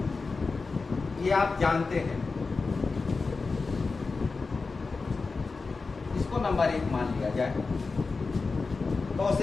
ये आप जानते हैं। इसको नंबर 1 मान लिया जाए। cos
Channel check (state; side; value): quieter; right; 4.2 dB